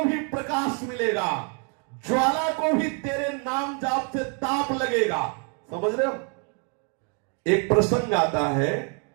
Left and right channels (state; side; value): quieter; left; 38.4 dB